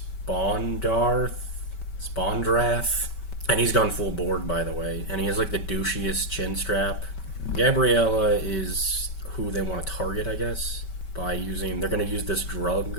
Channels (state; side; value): late; right; 5.2 ms